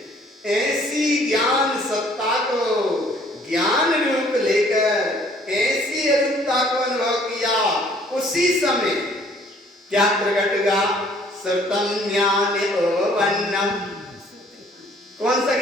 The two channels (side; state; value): both; normal; correlation 0.59